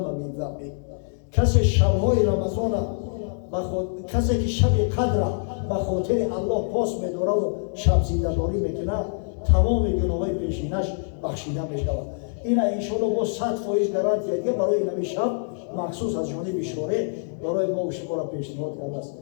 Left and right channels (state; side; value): silent; right; digital silence